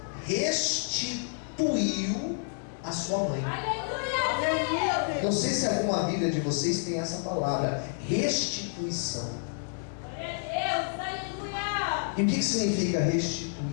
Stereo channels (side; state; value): right; silent; digital silence